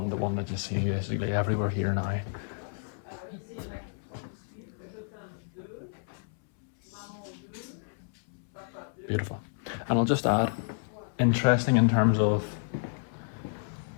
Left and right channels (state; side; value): silent; right; 57 dB below the other